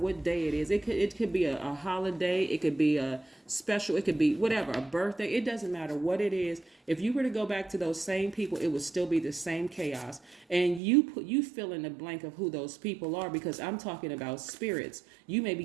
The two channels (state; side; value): drops out; left; at 10.8 s